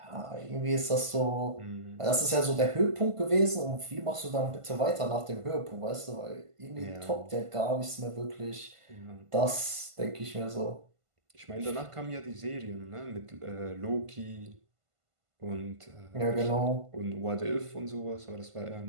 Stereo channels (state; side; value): late; left; 1.5 ms